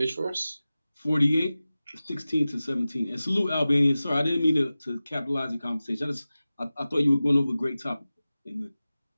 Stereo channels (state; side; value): inverted; both; correlation -0.96